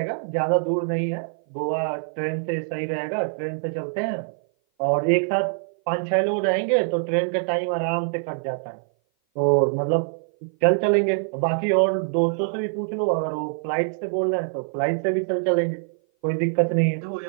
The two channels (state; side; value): silent; left; 57 dB below the other